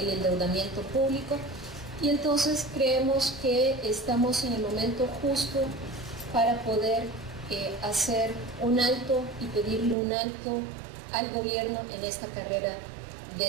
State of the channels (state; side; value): drops out; left; at 10.0 s